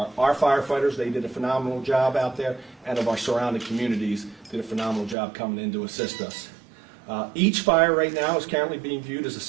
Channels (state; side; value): drops out; left; at 5.2 s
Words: our firefighters. They did a phenomenal job out there, and of our surrounding communities did a phenomenal job coming in to assist us. Each fire right now is currently being viewed as a